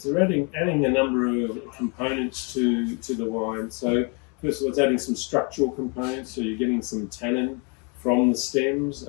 a number of components to the wine. So first of all, it's adding some structural components. So you're getting some tannin from the stems,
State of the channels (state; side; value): quieter; right; 34.4 dB